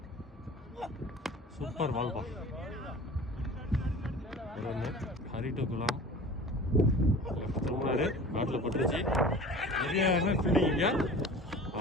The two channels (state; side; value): normal; both; correlation 0.41